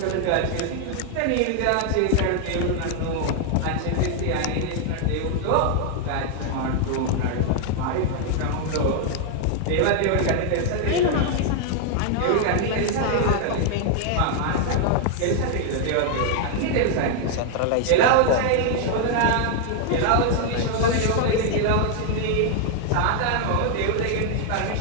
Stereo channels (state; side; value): different; both; correlation 0.00